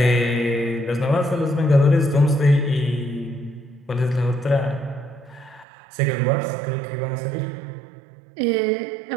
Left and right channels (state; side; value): drops out; left; at 5.7 s